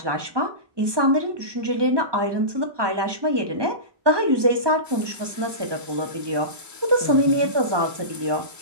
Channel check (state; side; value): late; left; 1.2 ms